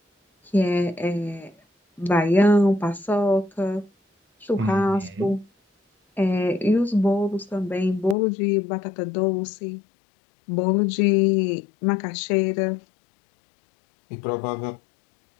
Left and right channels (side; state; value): right; drops out; at 8.2 s